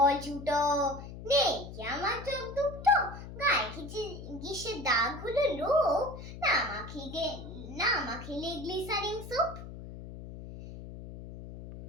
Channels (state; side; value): noise; left; hum, 12 dB below the sound